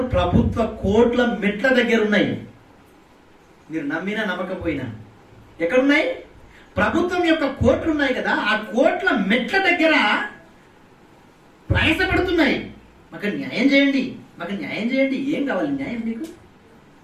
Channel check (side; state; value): both; identical; correlation 1.00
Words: ప్రభుత్వ కోట్ల మెట్ల దగ్గర ఉన్నాయి. మీరు నమ్మినా నమ్మకపోయినా ఎక్కడున్నాయి? ప్రభుత్వం యొక్క కోట్లు ఉన్నాయి కదా, ఆ కోట్ల మెట్ల దగ్గర ప్రయాసపడుతున్నాయి. మాకు న్యాయం చేయండి, మాకు న్యాయం చేయండి. ఏం కావాలి న్యాయం మీకు?